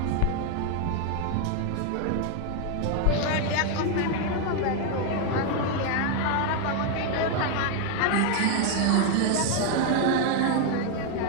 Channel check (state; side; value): different; both; correlation 0.01